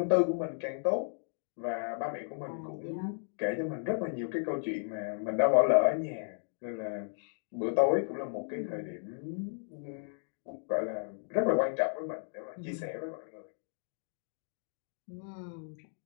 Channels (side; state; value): right; silent; digital silence